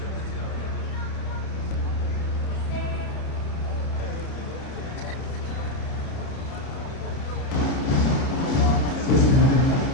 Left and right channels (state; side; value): late; right; 30 ms